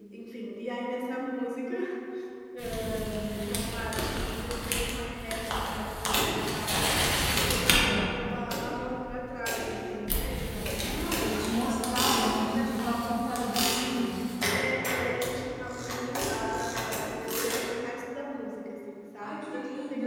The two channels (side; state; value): both; identical; correlation 1.00